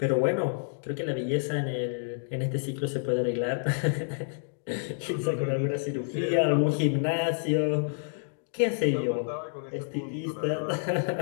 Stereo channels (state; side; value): silent; right; digital silence